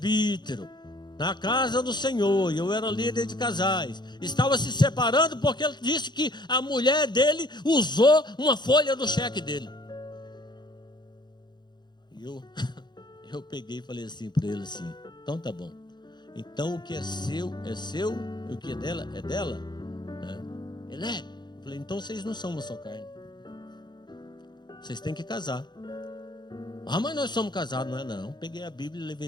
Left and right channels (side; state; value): right; late; 0.21 ms